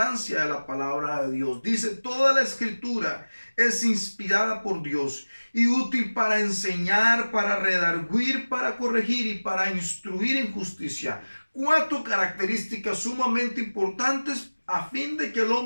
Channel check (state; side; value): inverted; both; correlation -1.00